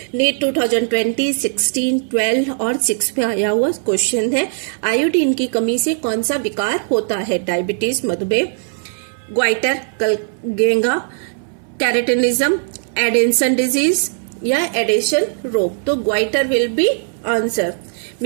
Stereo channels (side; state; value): left; silent; 61 dB below the other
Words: नीट 2020, 16, 12 और 6 में आया हुआ क्वेश्चन है, आयोडीन की कमी से कौन सा विकार होता है? डायबिटीज, मधुमेह, ग्वाइटर, गेंगा, कैरेटिनिज्म, एडेंसन डिजीज या एडेशन रोग। तो goitre will be answer,